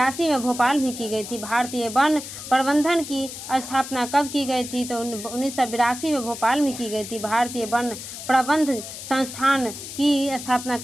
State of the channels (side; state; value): left; noise; hiss, 10 dB below the sound